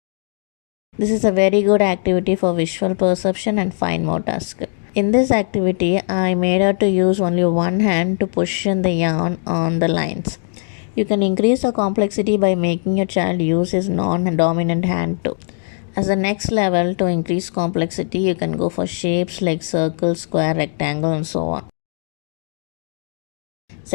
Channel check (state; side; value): silent; right; 66 dB below the other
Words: This is a very good activity for visual perception and fine motor skill. In this activity, I made her to use only one hand to push in the yarn on the lines. You can increase the complexity by making your child use his non-dominant hand too. As the next level, to increase complexity, you can go for shapes like circle, square, rectangle, and so on.